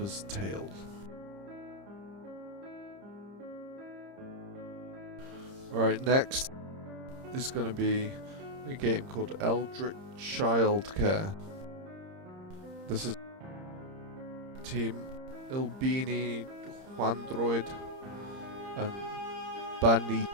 tale. Alright, next is going to be a game called Eldritch Childcare. This is Team Ilbini, Juandroid, and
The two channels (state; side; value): late; left; 30 ms